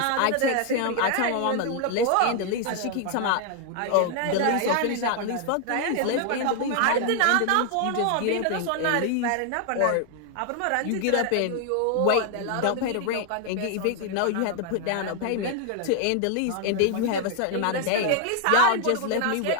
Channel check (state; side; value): different; both; correlation 0.00